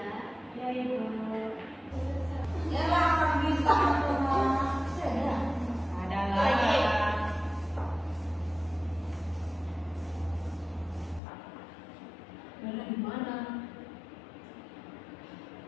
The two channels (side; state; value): right; drops out; at 11.2 s